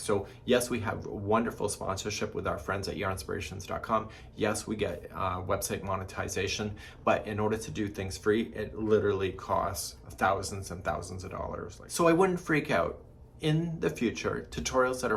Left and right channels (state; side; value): identical; both; correlation 1.00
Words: yes, we have wonderful sponsorship with our friends at yarnspirations.com. Yes, we get website monetization, but in order to do things free, it literally costs thousands and thousands of dollars. So I wouldn't freak out. In the future, tutorials that are